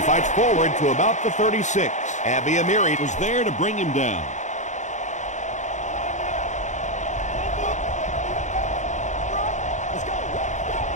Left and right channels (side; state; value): right; late; 0.35 ms